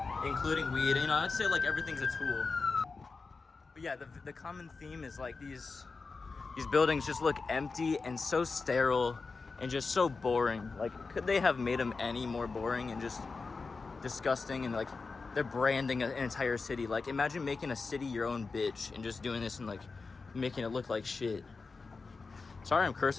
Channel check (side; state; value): right; quieter; 4.3 dB